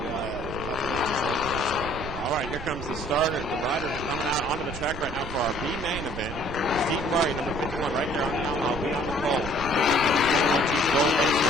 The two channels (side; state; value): right; noise; rumble, 10 dB below the sound